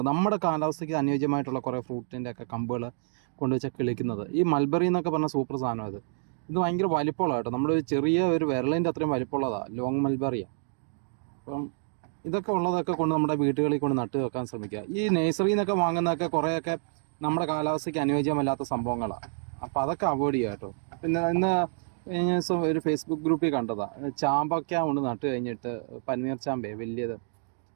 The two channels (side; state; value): left; silent; digital silence